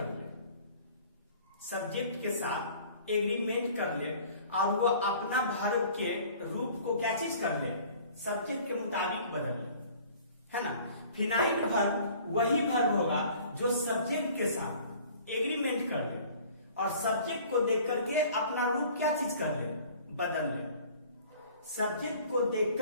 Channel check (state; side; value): inverted; both; correlation -0.50